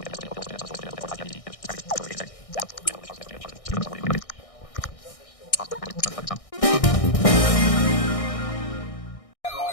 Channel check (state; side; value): late; right; 1.6 ms